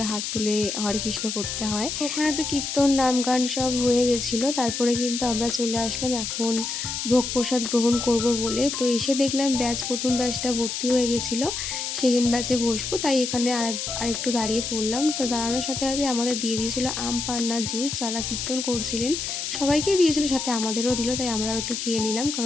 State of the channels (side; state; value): left; noise; hiss, 4 dB below the sound